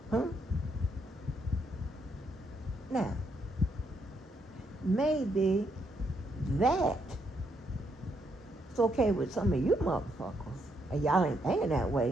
Now, maybe that it's okay with some of you motherfuckers, and y'all ain't thinking that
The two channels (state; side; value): normal; both; correlation 0.76